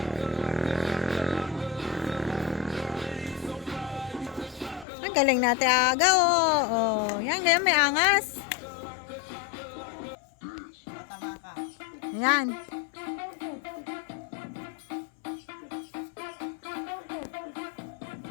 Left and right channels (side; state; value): right; drops out; at 4.9 s